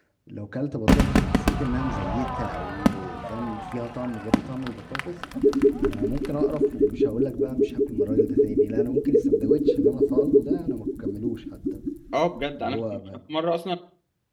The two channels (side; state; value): both; identical; correlation 1.00